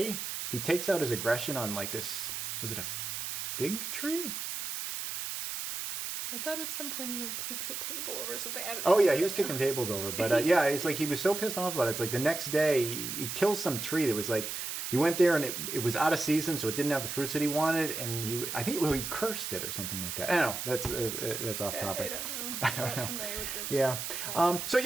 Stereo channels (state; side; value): noise; right; hiss, 4 dB below the sound